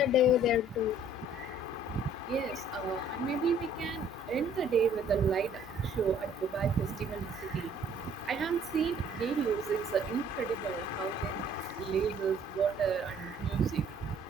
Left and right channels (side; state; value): both; normal; correlation 0.58